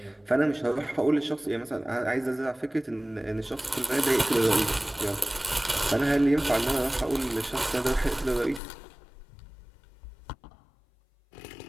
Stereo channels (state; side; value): drops out; right; at 8.6 s